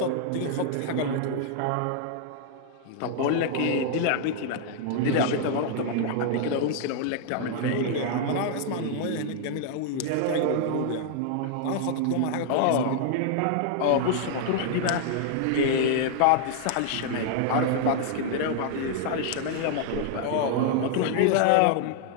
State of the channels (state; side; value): different; both; correlation -0.01